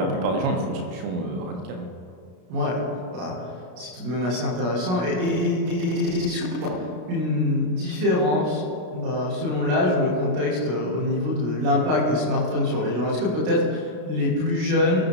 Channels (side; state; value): left; late; 33 ms